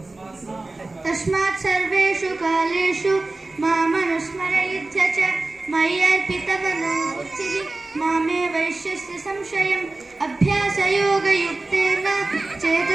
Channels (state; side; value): quieter; left; 3.1 dB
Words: तस्मात् सर्वेषु कालेषु मामनुस्मरयुध्य च मय्यर्पितमनो बुद्धिः मामे वैश्यस्य संशयम् अभ्यासयोगयुक्तेन